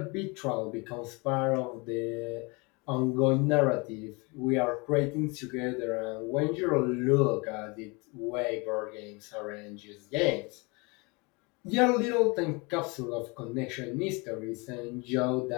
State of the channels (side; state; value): right; quieter; 28.4 dB